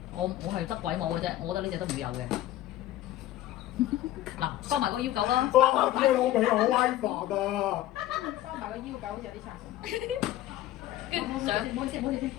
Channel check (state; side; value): quieter; right; 14.0 dB